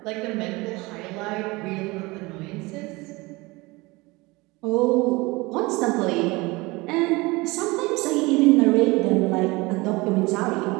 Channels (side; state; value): left; quieter; 23.3 dB